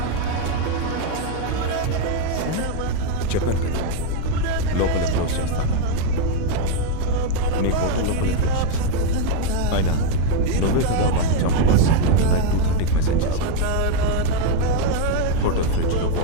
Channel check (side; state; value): both; different; correlation 0.01